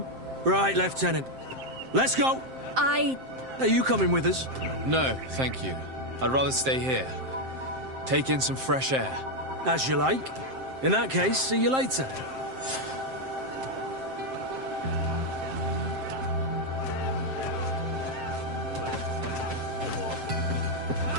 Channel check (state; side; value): late; left; 7.6 ms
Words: Right, Lieutenant. Let's go! Are you coming with us? No, thank you. I'd rather stay here. Take in some fresh air. As you like. In that case, see you later.